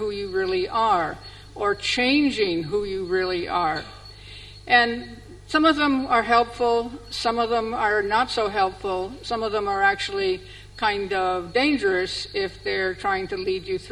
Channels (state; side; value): identical; both; correlation 1.00